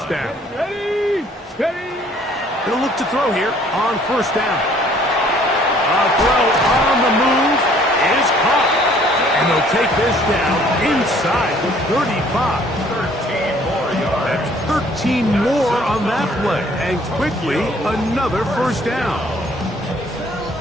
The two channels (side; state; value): both; normal; correlation 0.59